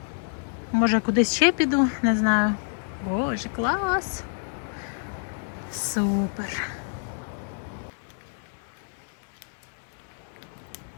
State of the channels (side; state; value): right; silent; digital silence